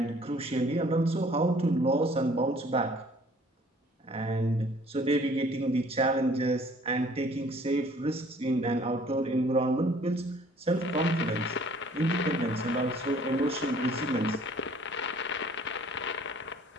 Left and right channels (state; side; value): normal; both; correlation 0.56